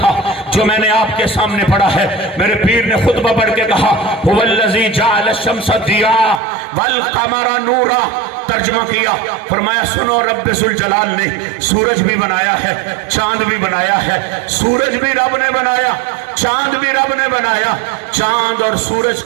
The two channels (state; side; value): drops out; left; at 6.4 s